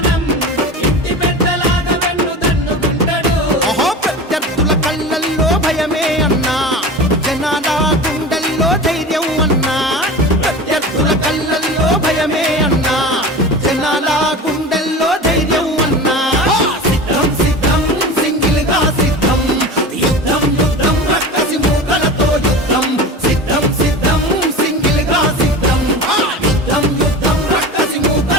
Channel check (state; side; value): normal; both; correlation 0.32